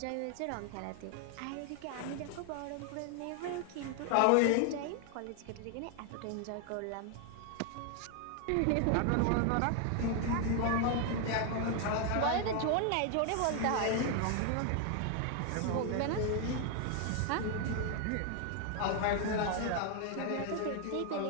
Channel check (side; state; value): both; different; correlation 0.00